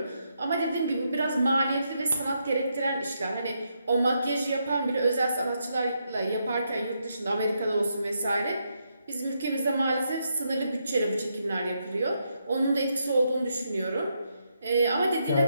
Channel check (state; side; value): inverted; both; correlation -0.80